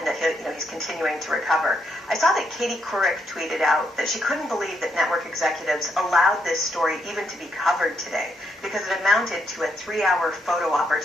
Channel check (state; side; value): normal; both; correlation 0.77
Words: that he's continuing to recover. I saw that Katie Couric tweeted out that she couldn't believe that network executives allowed this story even to be covered today because it amounted to a 3-hour photo